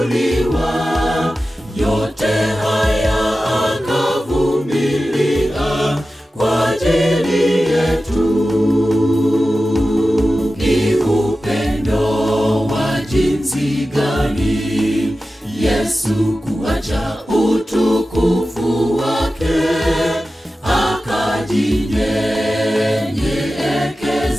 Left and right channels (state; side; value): normal; both; correlation 0.94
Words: Yote haya akavumilia kwa ajili yetu. Ni upendo wa jinsi gani Yesu kuacha utukufu wake,